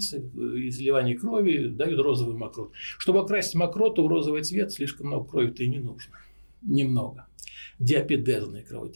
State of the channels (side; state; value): both; inverted; correlation -1.00